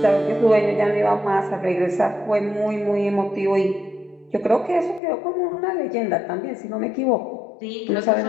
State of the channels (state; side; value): drops out; right; at 5.0 s